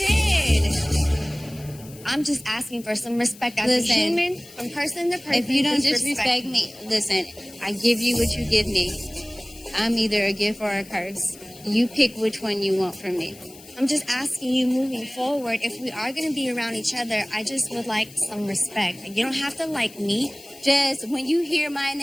I'm just asking for some respect as a human, from person to person. If you don't just disrespect me, listen, I give you what you give me. I'm either a gift or a curse. You pick which one you want from me. I'm just asking you moving forward, if we are going to be around each other, I just would like some respect. You don't have to like me. Just when you hear my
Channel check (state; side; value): noise; left; hiss, 20 dB below the sound